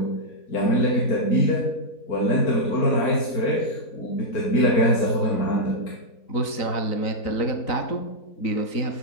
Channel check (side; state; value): right; late; 3.9 ms